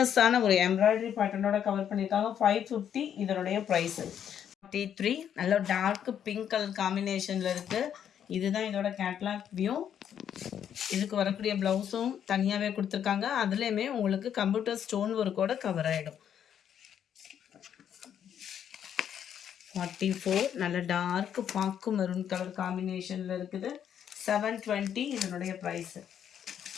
ஒரு எம்ப்ராய்டரி பேட்டர்னோட கவர் பண்ணியிருக்காங்க. 550 இதனுடைய ப்ரைஸு. 43 நல்ல டார்க் பிங்க் கலர் காம்பினேஷனில் இருக்குது. இதுதான் இதோட கேட்லாக் வியூ. இதுக்கு வரக்கூடிய ப்ளவுஸும் தனியாகவே கொடுத்துருக்காங்க. அதுலேயுமே உங்களுக்கு கம்ப்யூட்டர் ஸ்டோன் ஒர்க்கோட கவர் ஆகிடும். 44 நல்ல டார்க் பாக்கு மெரூன் கலர் காம்பினேஷனில் இருக்குது. 720 இதனுடைய ப்ரைஸு.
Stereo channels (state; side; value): quieter; right; 9.1 dB